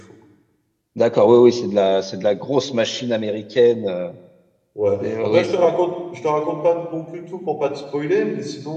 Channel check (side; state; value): both; identical; correlation 1.00